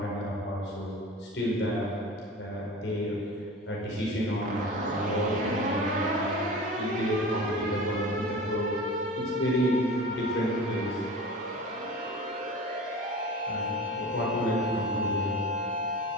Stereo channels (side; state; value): both; normal; correlation 0.35